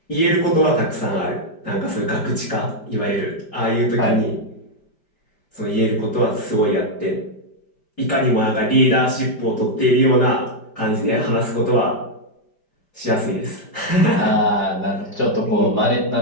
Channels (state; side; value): late; right; 5.1 ms